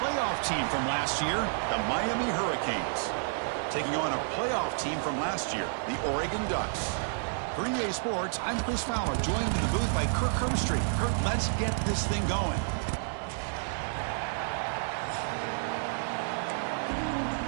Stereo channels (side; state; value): left; silent; 57 dB below the other